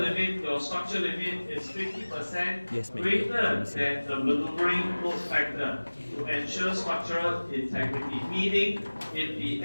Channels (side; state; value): both; inverted; correlation -1.00